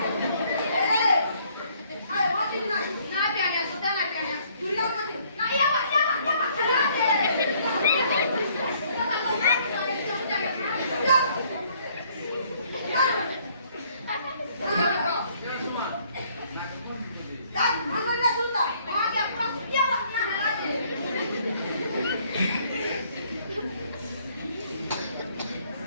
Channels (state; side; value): inverted; both; correlation -0.64